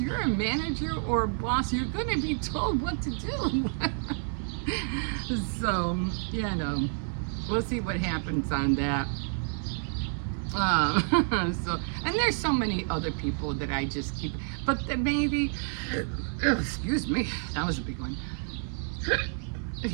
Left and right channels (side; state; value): left; silent; 58 dB below the other